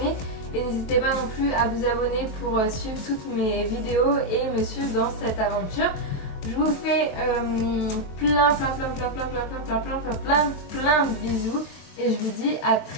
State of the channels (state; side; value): late; right; 23 ms